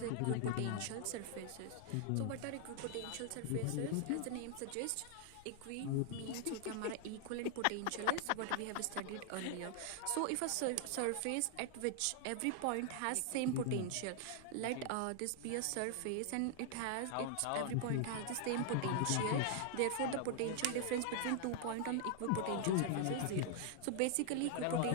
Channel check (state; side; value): different; both; correlation 0.00